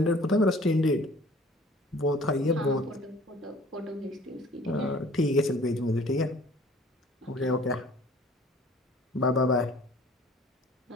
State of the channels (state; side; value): normal; both; correlation 0.51